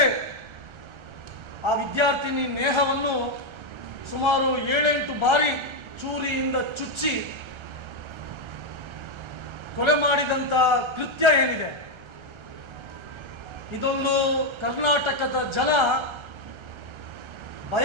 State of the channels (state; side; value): late; left; 1.3 ms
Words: ಆ ವಿದ್ಯಾರ್ಥಿನಿ ನೇಹವನ್ನು ಸುಮಾರು 7-8 ಬಾರಿ ಚೂರಿಯಿಂದ ಚುಚ್ಚಿ ಕೊಲೆ ಮಾಡಿದಂಥ ಕೃತ್ಯ ಏನಿದೆ, ಇದೊಂದು ಕರ್ನಾಟಕದ ಜನ